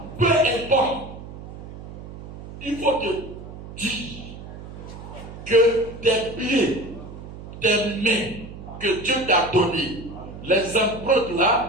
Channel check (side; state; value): right; noise; hum, 13 dB below the sound